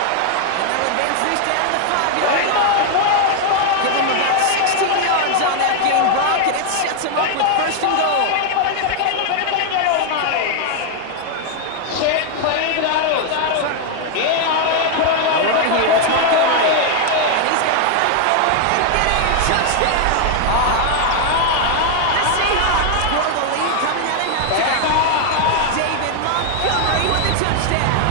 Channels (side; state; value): both; different; correlation 0.00